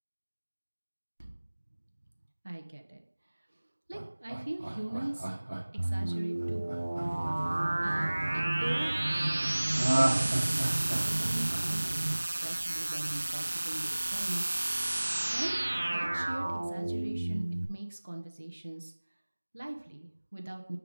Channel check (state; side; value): inverted; both; correlation -1.00